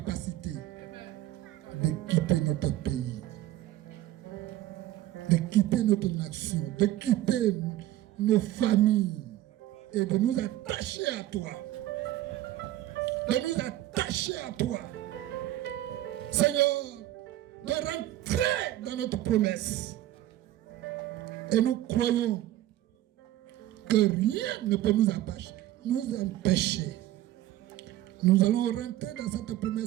de quitter notre pays, de quitter notre nation, de quitter nos familles et de nous attacher à toi. De nous attacher à toi. Seigneur, de rentrer dans notre promesse. Et nous croyons que rien ne peut nous empêcher. Nous allons rentrer dans cette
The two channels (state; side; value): quieter; left; 14.4 dB